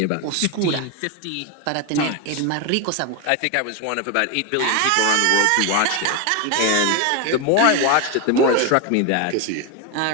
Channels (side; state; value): both; different; correlation 0.02